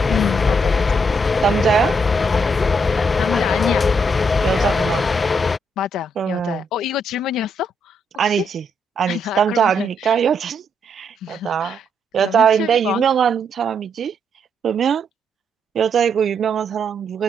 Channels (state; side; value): normal; both; correlation 0.76